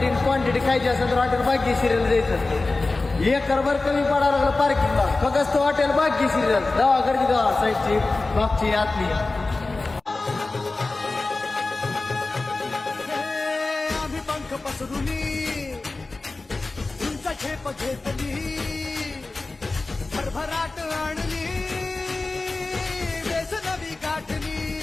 क्वांटिटी खायची असेल तर हॉटेल भाग्यश्रीला जायचं. एकरभर कमी पडायला लागलं पार्किंगला. फक्त तो हॉटेल भाग्यश्रीला गावाकडची गावा साईडची मागची आतली. आम्ही पंख पसरुनी तुमचा झेप घेतली भरभराट आणली बेस नवी गाठली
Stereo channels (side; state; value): right; quieter; 3.4 dB